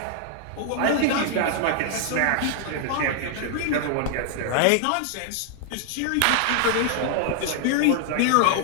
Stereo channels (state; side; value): different; both; correlation 0.00